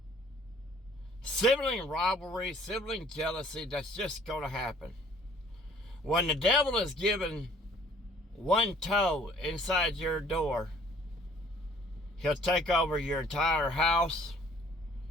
sibling rivalry, sibling jealousy, that's just going to happen. When the devil is given one toe inside your door, he'll take over your entire house,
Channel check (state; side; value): normal; both; correlation 0.56